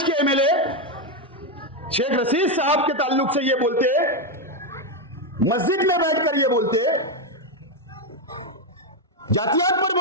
के एमएलए शेख रशीद साहब के ताल्लुक से ये बोलते, मस्जिद में बैठकर ये बोलते, जातियात पर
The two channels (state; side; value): normal; both; correlation 0.06